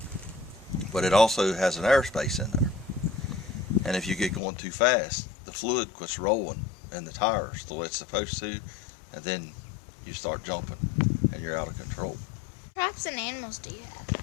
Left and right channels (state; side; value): drops out; right; at 4.4 s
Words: But it also has an airspace in there. And if you get going too fast, the fluid quits rolling in the tires the way it's supposed to, and then you start jumping and you're out of control. What crops and animals do you